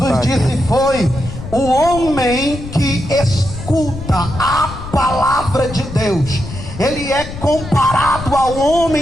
disse foi: o homem que escuta a palavra de Deus, ele é comparado ao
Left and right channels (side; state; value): left; noise; rumble, 11 dB below the sound